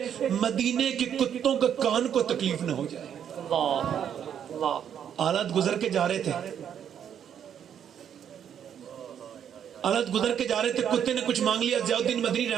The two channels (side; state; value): left; quieter; 8.9 dB